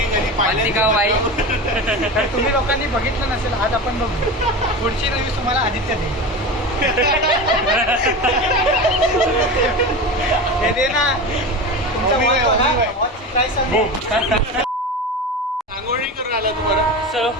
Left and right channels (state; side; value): normal; both; correlation 0.27